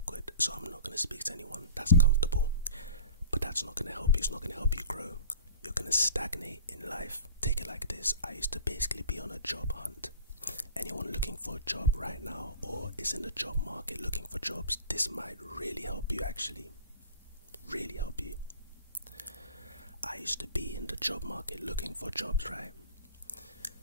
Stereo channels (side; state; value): both; inverted; correlation -0.39